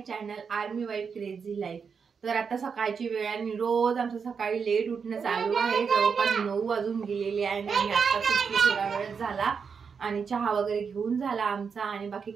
channel army wife crazy life. तर आता सकाळची वेळ आणि रोज आमचं सकाळी लेट उठणं चालू आहे। जवळपास 9 वाजून गेलेले आहे आणि आता थोडा वेळ झाला आणि चहा वगैरे घेऊन झाला आमचा आणि बाकी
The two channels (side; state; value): left; quieter; 6.0 dB